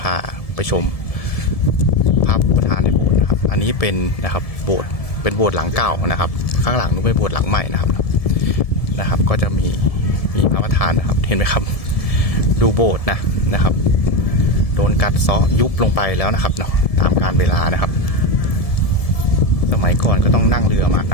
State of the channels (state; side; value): late; right; 1.7 ms